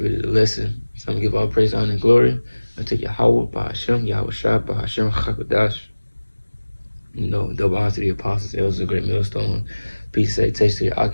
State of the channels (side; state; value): both; inverted; correlation -1.00